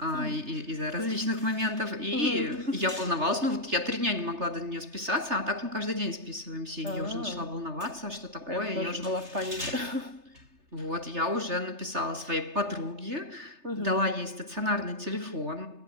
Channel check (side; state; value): left; late; 3.3 ms